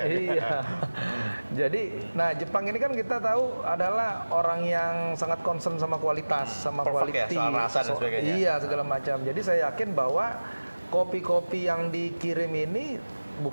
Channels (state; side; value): inverted; both; correlation -1.00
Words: Iya. Jadi, nah Jepang ini kan kita tahu adalah orang yang sangat concern sama kualitas, sama quality, soal rasa dan sebagainya. Iya, segala macam. Jadi saya yakin bahwa kopi-kopi yang dikirim ini